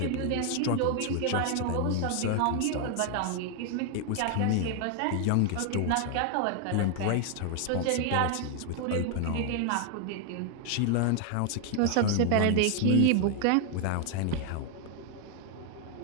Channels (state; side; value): different; both; correlation 0.00